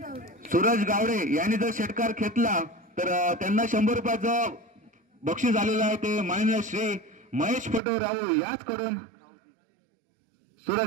सूरज गावडे यांनी जर षटकार घेतला तर त्यांना 100 रुपयाचं बक्षीस आलेलं आहे. ते माननीय श्री महेश पटूराव याचकडून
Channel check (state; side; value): drops out; left; at 7.8 s